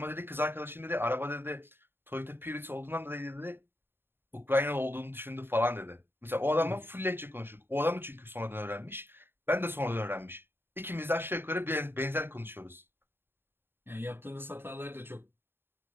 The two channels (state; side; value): late; left; 0.11 ms